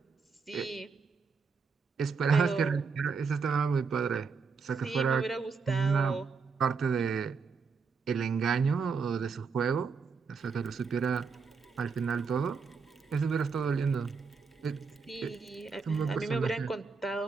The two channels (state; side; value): quieter; left; 5.2 dB